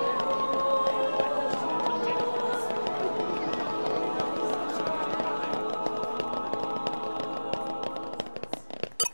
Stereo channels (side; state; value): both; inverted; correlation -1.00